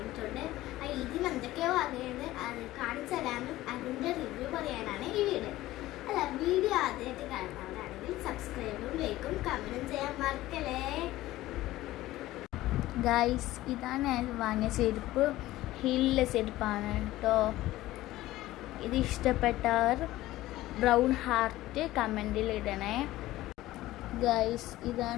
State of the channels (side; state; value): right; quieter; 16.3 dB